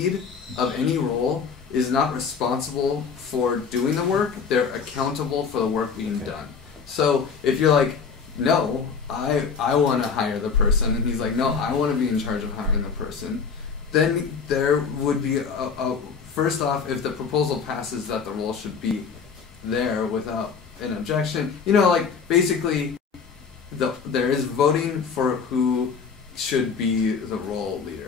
of any role is not responsible for doing the work, they're accountable for the work being done. So if you're like, no, I want to hire the person, and he's like, no, I want to be in charge of hiring the person, then there would be first off, if the proposal passes that the role should be there without an objection, you know, like basically there is voting for who should be the role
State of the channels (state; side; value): quieter; right; 5.9 dB